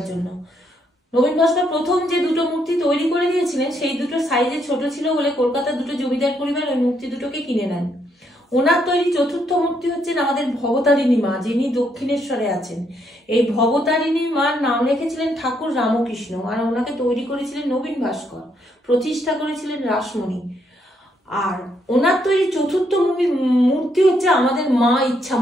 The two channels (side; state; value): both; normal; correlation 0.74